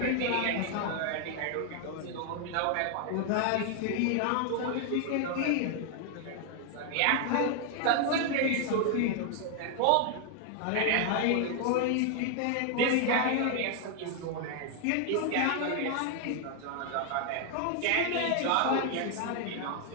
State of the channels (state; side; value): different; both; correlation 0.00